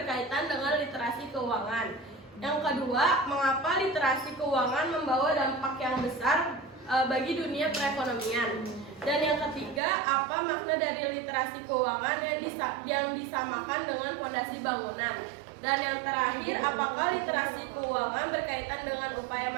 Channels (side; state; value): left; drops out; at 9.8 s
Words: dengan literasi keuangan? Yang kedua, mengapa literasi keuangan membawa dampak yang besar bagi dunia perekonomian? Dan yang ketiga, apa makna dari literasi keuangan yang disamakan dengan fondasi bangunan? Dan yang terakhir, apakah literasi keuangan berkaitan dengan upaya